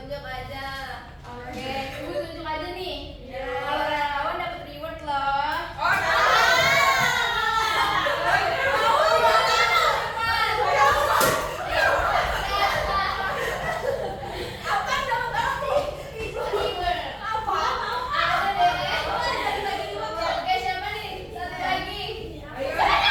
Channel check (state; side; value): identical; both; correlation 1.00